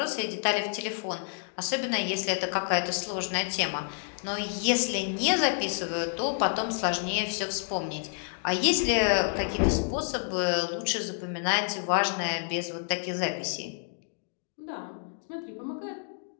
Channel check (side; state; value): right; silent; digital silence